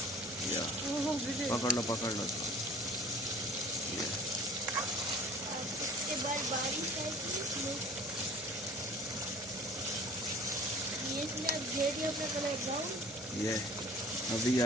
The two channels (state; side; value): normal; both; correlation 0.47